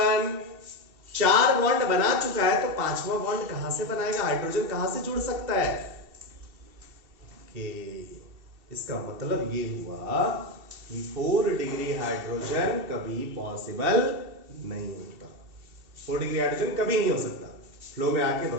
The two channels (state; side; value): late; left; 2.7 ms